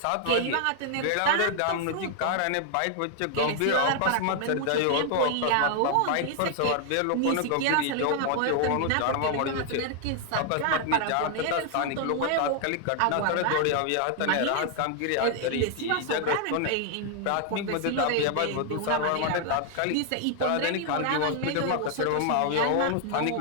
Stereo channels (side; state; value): both; different; correlation 0.00